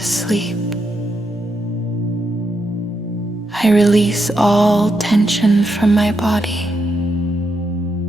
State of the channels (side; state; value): both; normal; correlation 0.82